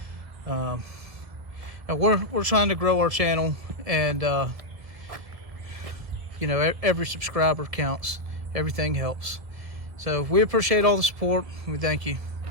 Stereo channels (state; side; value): late; left; 1.4 ms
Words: We're trying to grow our channel, and you know, every subscriber counts. Everything helps. So we appreciate all the support. We thank you.